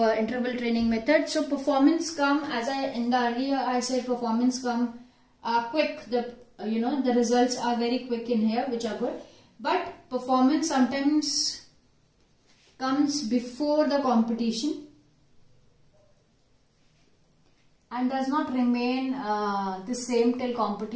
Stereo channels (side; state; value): both; identical; correlation 1.00